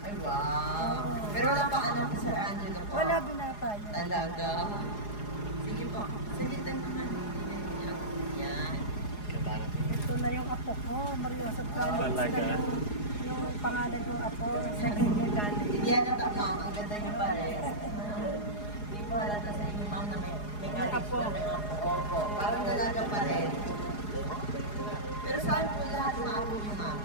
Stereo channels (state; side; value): late; right; 4.8 ms